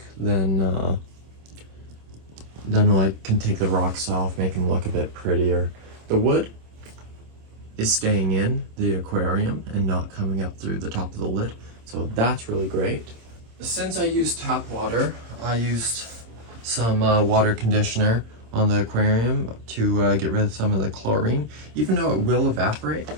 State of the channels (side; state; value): left; late; 26 ms